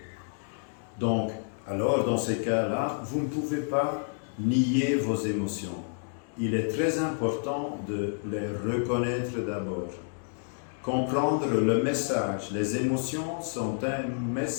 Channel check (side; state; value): right; silent; 58 dB below the other